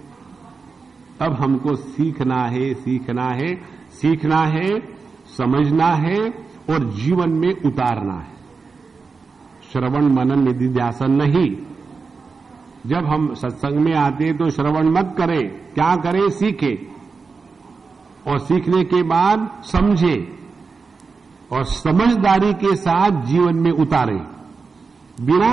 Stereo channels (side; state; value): left; quieter; 4.7 dB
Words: अब हमको सीखना है, सीखना है, समझना है और जीवन में उतारना है। श्रवण मनन निधिध्यासन नहीं। जब हम सत्संग में आते तो श्रवण मत करें, क्या करें? सीखे, और सीखने के बाद समझे और समझदारी के साथ जीवन में उतारें।